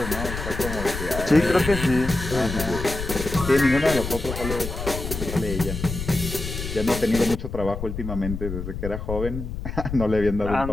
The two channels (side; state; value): left; noise; rumble, 6 dB below the sound